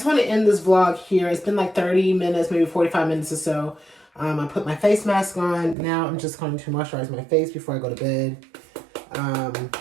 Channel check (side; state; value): left; drops out; at 5.8 s